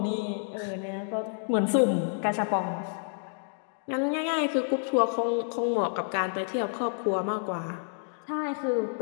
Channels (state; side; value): silent; right; digital silence